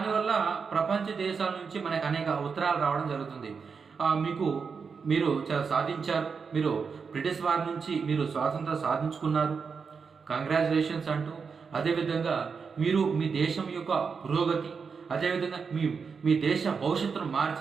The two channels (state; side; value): quieter; left; 5.6 dB